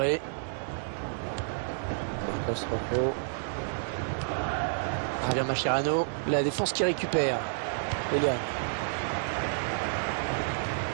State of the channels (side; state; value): left; silent; 57 dB below the other